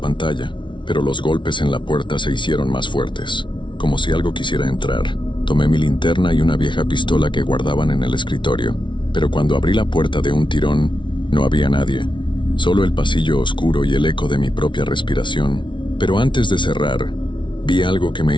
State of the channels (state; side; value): late; right; 0.24 ms